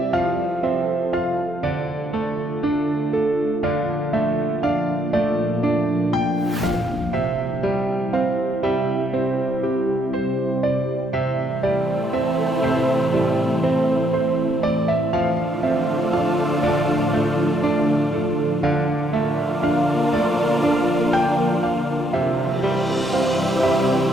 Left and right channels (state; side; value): normal; both; correlation 0.72